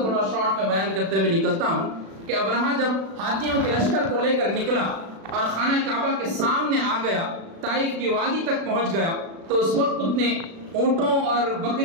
شارٹ میں بیان کرتے ہوئے نکلتا ہوں کہ ابرہہ جب ہاتھیوں کے لشکر کو لے کر نکلا اور خانہ کعبہ کے سامنے آ گیا، طائف کی وادی تک پہنچ گیا، تو اس وقت اس نے اونٹوں اور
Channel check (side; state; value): left; late; 36 ms